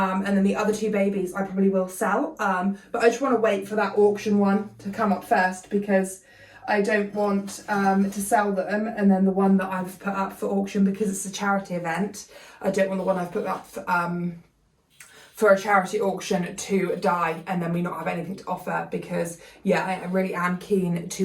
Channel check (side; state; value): both; identical; correlation 1.00